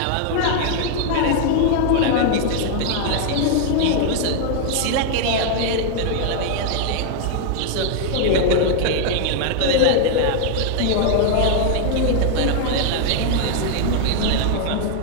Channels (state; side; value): different; both; correlation 0.00